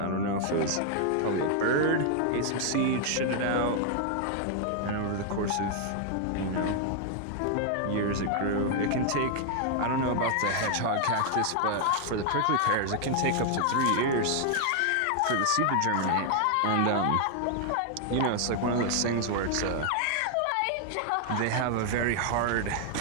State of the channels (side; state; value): both; different; correlation 0.00